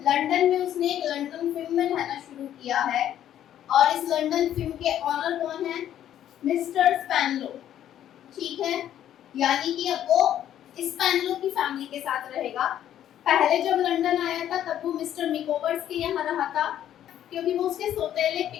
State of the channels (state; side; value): quieter; right; 11.1 dB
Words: में उसने एक लंदन फिल्म में रहना शुरू किया है और इस लंदन फिल्म के ऑनर कौन है? मिस्टर स्पैनलो। ठीक है, यानी कि अब वो स्पैनलो की फैमिली के साथ रहेगा। पहले जब लंदन आया था तब वो मिस्टर मिकोवर्स के यहाँ रहा था, क्योंकि वो उसके सौतेले